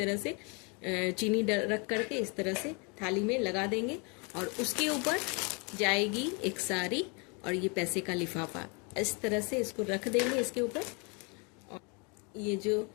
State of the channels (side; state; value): right; quieter; 32.6 dB